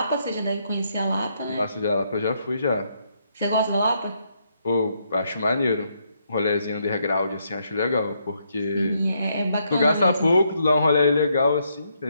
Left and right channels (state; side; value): inverted; both; correlation -0.75